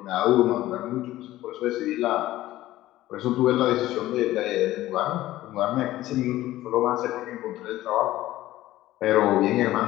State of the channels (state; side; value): quieter; right; 15.5 dB